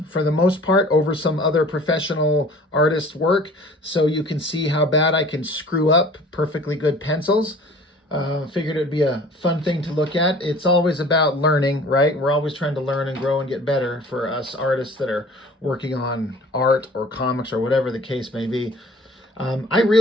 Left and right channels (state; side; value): normal; both; correlation 0.48